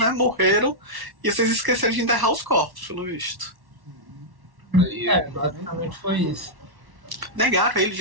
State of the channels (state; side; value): late; left; 1.1 ms